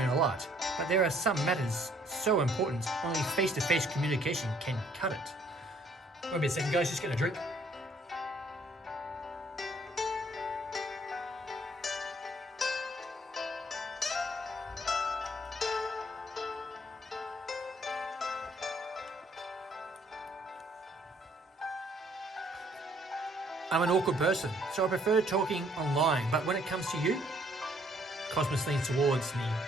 a lot, but there are some matters so important only face-to-face communication can cut it. Wait a second, guys, just get a drink. I'm an awkward person, so I prefer talking online, but when it comes to you, Cosmos leans towards me,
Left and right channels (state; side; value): normal; both; correlation 0.64